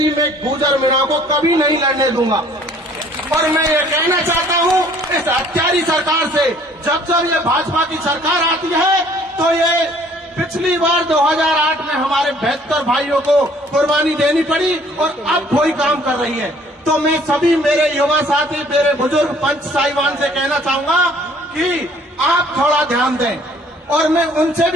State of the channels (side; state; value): both; normal; correlation 0.57